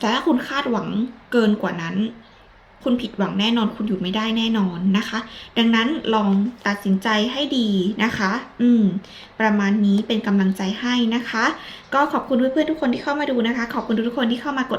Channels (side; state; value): both; identical; correlation 1.00